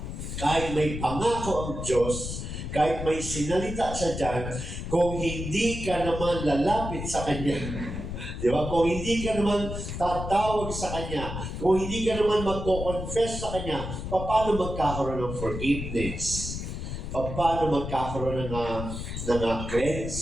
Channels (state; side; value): noise; left; rumble, 6 dB below the sound